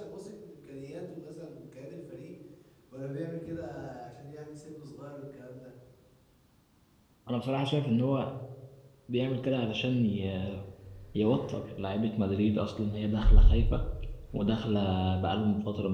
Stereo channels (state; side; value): identical; both; correlation 1.00